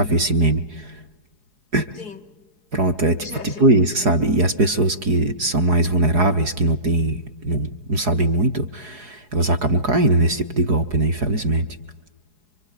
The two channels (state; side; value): late; left; 4.8 ms